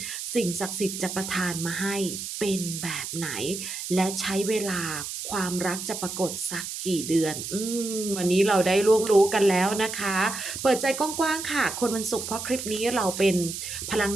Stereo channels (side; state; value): right; noise; hiss, 7 dB below the sound